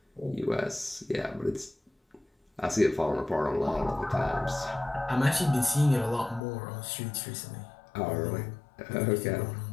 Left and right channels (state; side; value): drops out; right; at 6.4 s